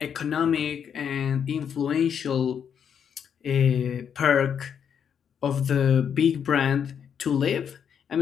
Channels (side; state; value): right; quieter; 7.9 dB